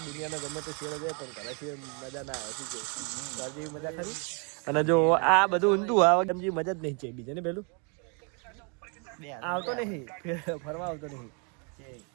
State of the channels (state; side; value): quieter; left; 36.7 dB